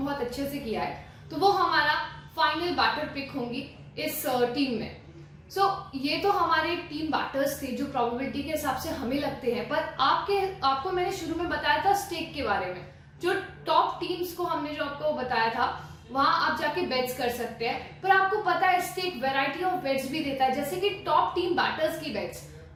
बहुत अच्छे से किया है, तो वो हमारा फाइनल बैटर पिक होंगी इस टीम में। सो ये तो हमारे टीम बैटर्स थे जो प्रोबेबिलिटी के हिसाब से हमें लगते हैं, पर आपको मैंने शुरू में बताया था स्टेक के बारे में, जो टॉप टीम्स को हमने जो आपको बताया था वहां आप जाके बेट्स कर सकते हैं, पर आपको पता है स्टेक वैरायटी ऑफ बेट्स भी देता है, जैसे कि टॉप टीम बैटर्स की बेट्स,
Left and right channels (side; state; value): both; identical; correlation 1.00